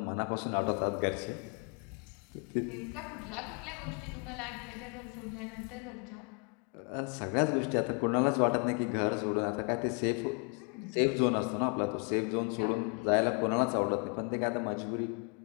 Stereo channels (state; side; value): quieter; right; 35.8 dB